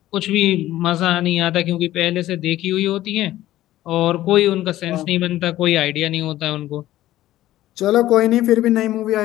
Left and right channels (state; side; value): quieter; right; 14.6 dB